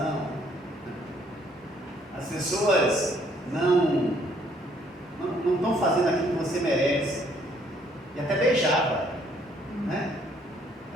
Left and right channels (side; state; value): both; normal; correlation 0.65